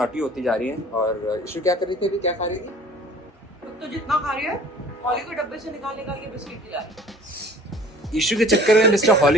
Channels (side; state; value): both; normal; correlation 0.49